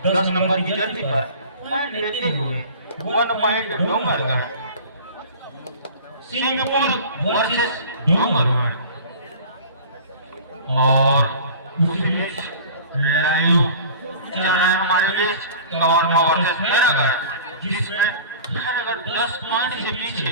10 नंबर की जर्सी पर पॉइंट लेते हुए 1 पॉइंट डोंगरगढ़, सिंहपुर वर्सेस डोंगरगढ़। और उसी बीच लाइव चल रहा है हमारे बीच कौरवा वर्सेस खैरागढ़, जिसमें खैरागढ़ 10 पॉइंट से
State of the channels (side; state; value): both; inverted; correlation -0.41